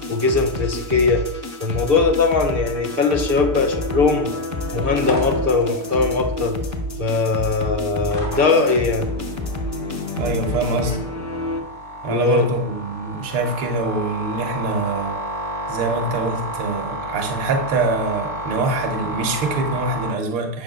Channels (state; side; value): late; left; 6.7 ms